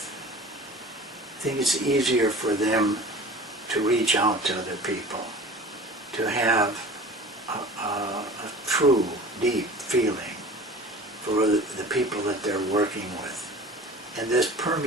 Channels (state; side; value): normal; both; correlation 0.41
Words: I think it's easier for them to reach out to other people, to have a true, deep feeling for the people that they're working with. And this